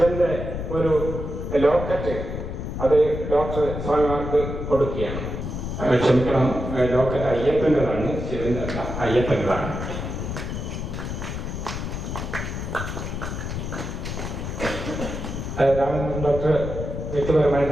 ഒരു ലോക്കറ്റ് അത് ഡോക്ടർ സ്വാമിമാർക്ക് കൊടുക്കുകയാണ്. ക്ഷമിക്കണം, ലോക്കറ്റ് അയ്യപ്പൻ്റെതാണ്, ശിവന്റെ അല്ല, അയ്യപ്പൻ്റെതാണ്. രാമചന്ദ്രൻ ഡോക്ടർ വ്യക്തിപരമായി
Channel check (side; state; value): left; noise; rumble, 5 dB below the sound